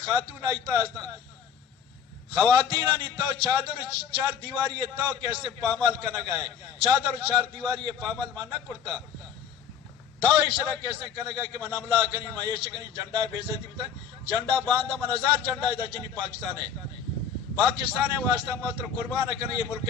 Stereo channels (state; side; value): quieter; right; 7.6 dB